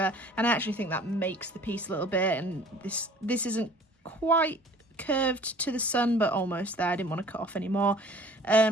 and I actually think that makes the piece a little bit. And this isn't quite curved to the sun, but almost there. I didn't want to cut off anymore.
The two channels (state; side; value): normal; both; correlation 0.49